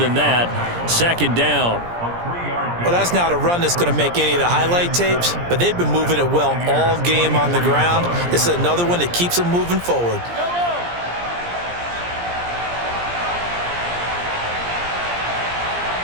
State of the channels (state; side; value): late; left; 17 ms